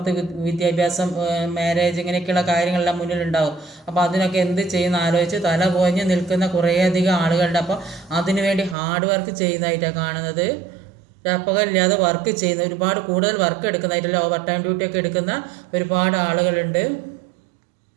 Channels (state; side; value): drops out; left; at 8.8 s